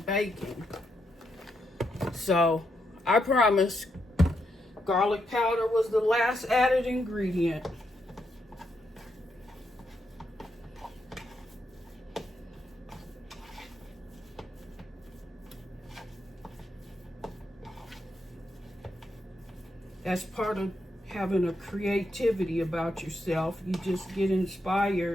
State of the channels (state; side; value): normal; both; correlation 0.81